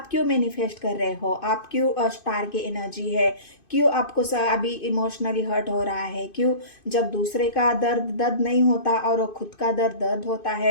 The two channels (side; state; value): right; late; 2.5 ms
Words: क्यों मैनिफेस्ट कर रहे हो, आप क्यों स्टार की एनर्जी है, क्यों आपको अभी इमोशनली हर्ट हो रहा है, क्यों, जब दूसरे का दर्द नहीं होता और खुद का दर्द होता